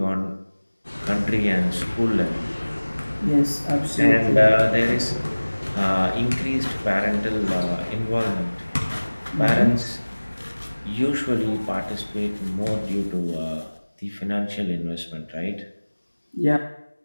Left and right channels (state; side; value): inverted; both; correlation -1.00